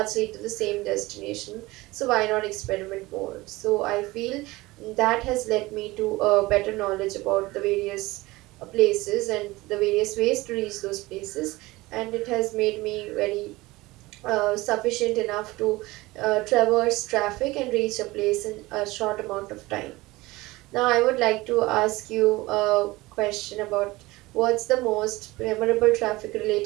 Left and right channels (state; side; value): quieter; left; 20.5 dB